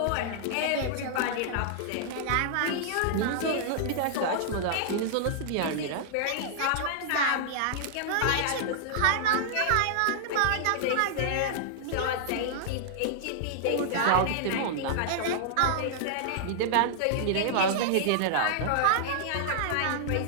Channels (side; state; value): both; different; correlation -0.01